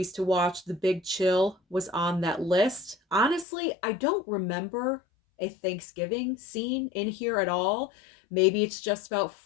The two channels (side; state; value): right; drops out; at 3.5 s